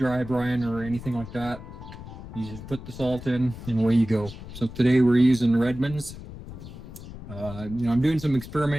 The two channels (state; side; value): noise; left; rumble, 13 dB below the sound